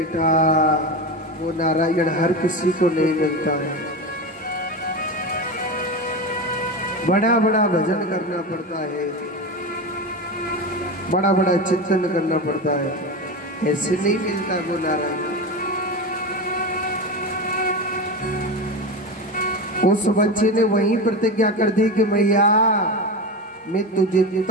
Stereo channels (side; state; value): both; normal; correlation 0.22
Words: वो नारायण हर किसी को नहीं मिलता है, बड़ा बड़ा भजन करना पड़ता है, बड़ा बड़ा चिंतन करना पड़ता है, ऐसे नहीं मिलता वो नारायण। उस बच्चे ने वही प्रतिज्ञा कर दी कि मैया मैं तुझे